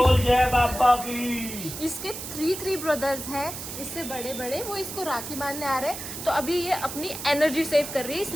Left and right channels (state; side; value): noise; right; hiss, 8 dB below the sound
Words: जय बाबा की। इसके थ्री ब्रदर्स हैं, इससे बड़े बड़े, वो इसको राखी बांधने आ रहे हैं। तो अभी ये अपनी एनर्जी सेव कर रही है,